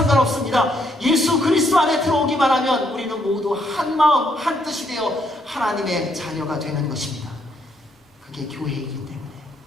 예수 그리스도 안에 들어오기만 하면 우리는 모두 한 마음, 한 뜻이 되어 하나님의 자녀가 되는 것입니다. 그게 교회이기 때문에.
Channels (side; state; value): both; normal; correlation 0.72